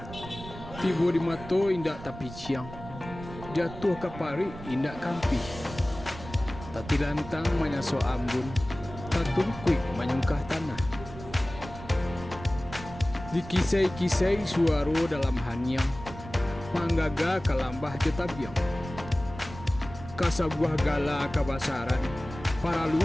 Tiba di mato indak tapi ciang, jatuh ke pari indak kampi. Tati lantang manyaso ambun, tatungkuik manyungkah tanah. Dikisai-kisai suaro dalam hanyang, manggaga kalambah jetabiang. Kasabuah gala kabasaran, paralu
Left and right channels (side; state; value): right; noise; rumble, 13 dB below the sound